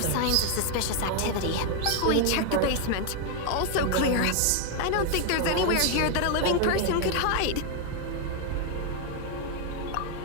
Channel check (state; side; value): different; both; correlation 0.01